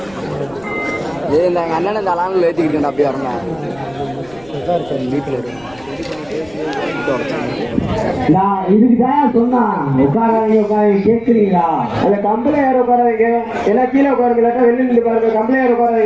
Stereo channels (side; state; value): left; noise; rumble, 26 dB below the sound